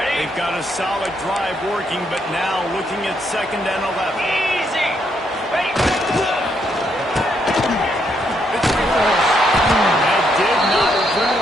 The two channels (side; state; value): both; normal; correlation 0.75